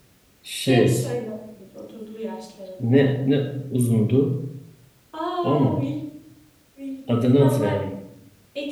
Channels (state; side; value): identical; both; correlation 1.00